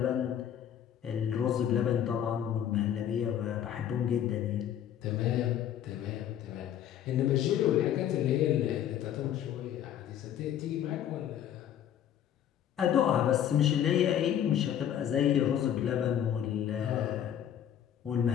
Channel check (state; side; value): quieter; right; 10.1 dB